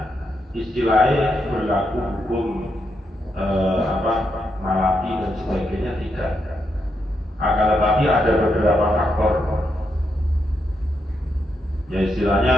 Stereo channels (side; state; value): both; normal; correlation 0.82